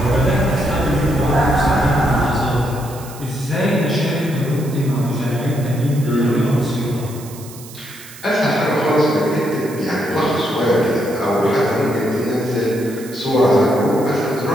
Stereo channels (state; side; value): noise; right; hiss, 17 dB below the sound